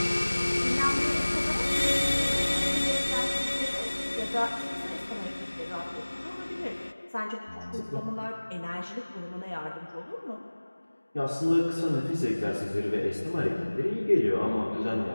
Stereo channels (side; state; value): both; inverted; correlation -1.00